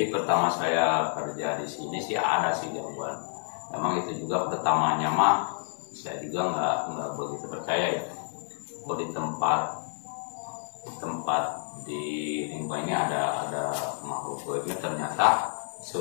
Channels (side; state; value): right; silent; 59 dB below the other